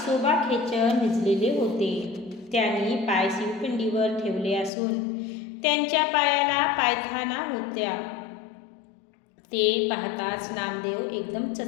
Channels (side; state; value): right; drops out; at 4.7 s